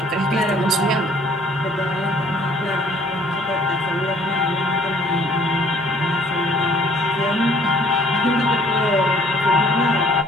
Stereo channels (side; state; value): both; normal; correlation 0.58